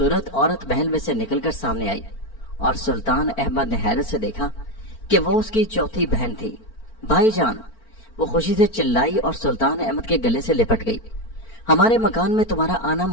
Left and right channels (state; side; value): late; right; 4.4 ms